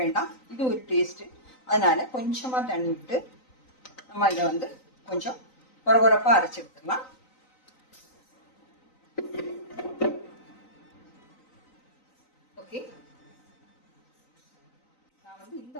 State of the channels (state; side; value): late; right; 3.9 ms